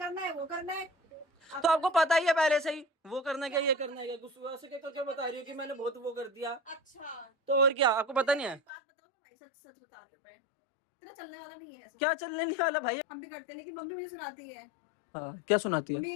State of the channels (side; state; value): right; drops out; at 8.6 s